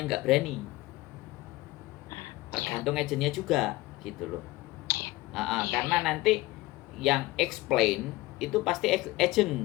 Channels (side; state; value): right; quieter; 19.2 dB